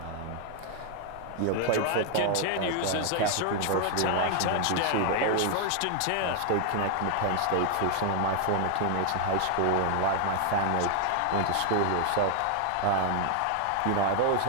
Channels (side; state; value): both; different; correlation 0.00